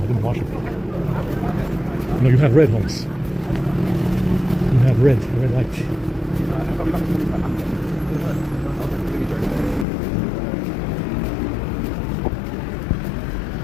I didn't wash them. No, you have red, Holmes. You have red light.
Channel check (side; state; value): right; drops out; at 9.9 s